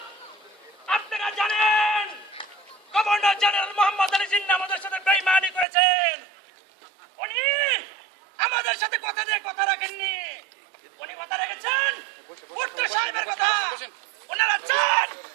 আপনারা জানেন গভর্নর জেনারেল মোহাম্মদ আলী জিন্নাহ আমাদের সাথে বেঈমানি করেছেন। উনি আমাদের সাথে কথা দিয়ে কথা রাখেননি। উনি কথা রেখেছেন ভুট্টো সাহেবের কথা। ওনারা চান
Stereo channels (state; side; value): drops out; left; at 5.7 s